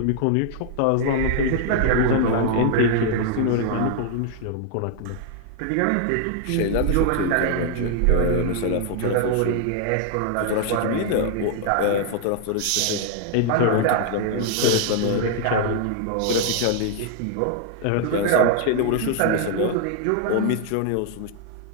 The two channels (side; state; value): both; different; correlation 0.00